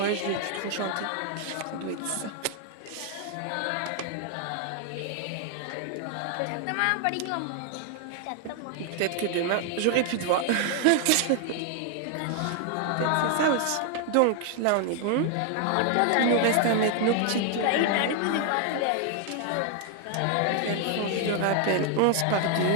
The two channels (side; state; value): both; different; correlation 0.00